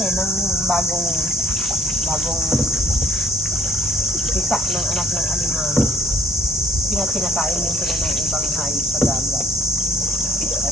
ng bagong isa ng anak ng alimango. Kinakain din sila ng ibang hayop sa dagat.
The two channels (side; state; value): both; normal; correlation 0.62